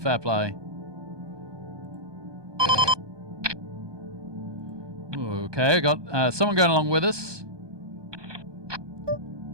play. Okay, I got someone going along with us.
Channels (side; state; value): left; late; 1.2 ms